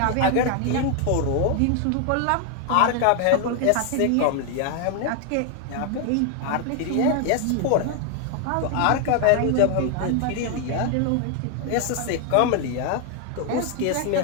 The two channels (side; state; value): both; different; correlation 0.00